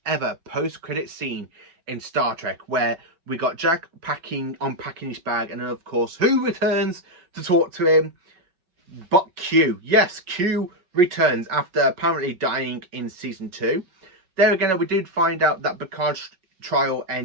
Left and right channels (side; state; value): left; late; 5.3 ms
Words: ever post-credit scene in Star Trek, where we got Jack unpacking his bag, and then of course who returns to talk to him but Q. Yes, Q returns after apparently dying in season 2. There again, we did find out that Picard's trial